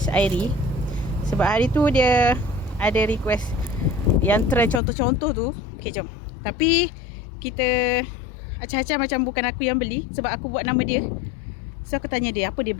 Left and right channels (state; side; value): drops out; right; at 4.8 s